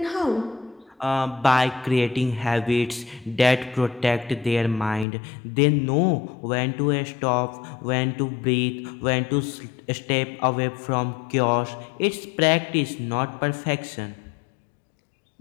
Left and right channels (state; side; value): drops out; right; at 5.1 s